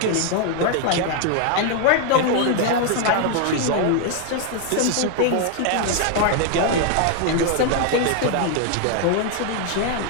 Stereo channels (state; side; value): different; both; correlation 0.00